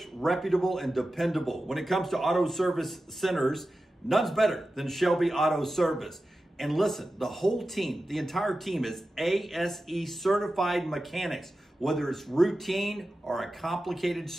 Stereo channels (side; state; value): both; normal; correlation 0.93